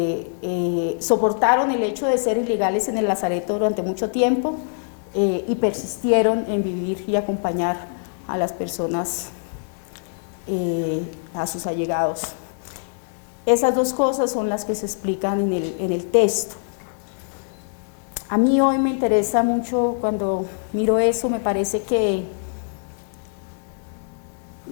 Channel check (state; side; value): silent; right; digital silence